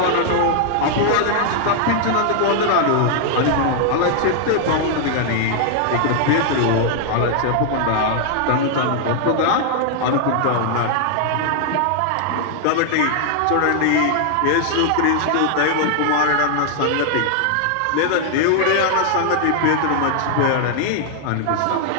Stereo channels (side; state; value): both; different; correlation 0.00